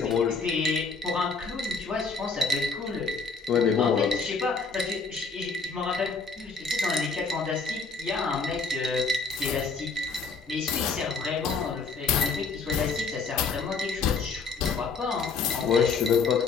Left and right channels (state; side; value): quieter; right; 4.7 dB